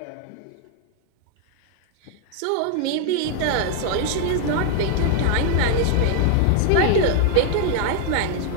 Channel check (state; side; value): different; both; correlation 0.00